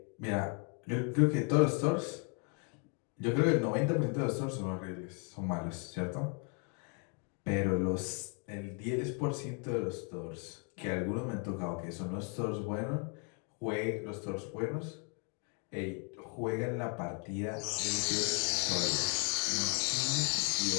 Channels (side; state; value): right; quieter; 38.5 dB